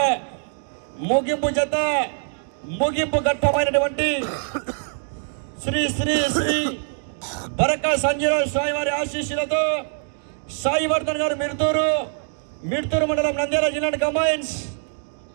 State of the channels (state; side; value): silent; left; 63 dB below the other